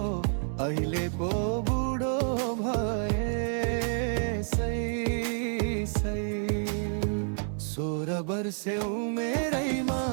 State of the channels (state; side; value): silent; left; 58 dB below the other